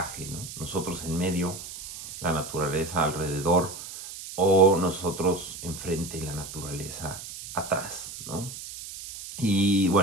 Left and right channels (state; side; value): noise; right; hiss, 11 dB below the sound